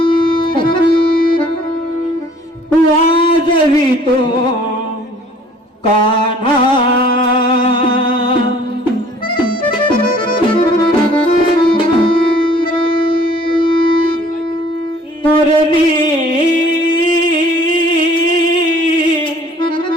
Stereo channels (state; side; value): normal; both; correlation 0.55